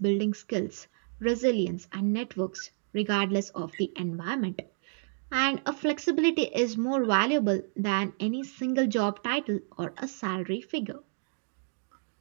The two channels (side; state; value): left; silent; digital silence